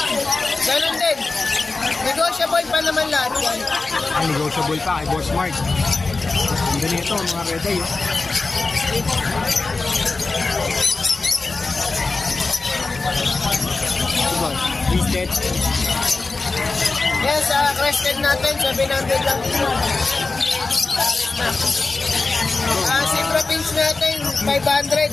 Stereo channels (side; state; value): right; quieter; 3.7 dB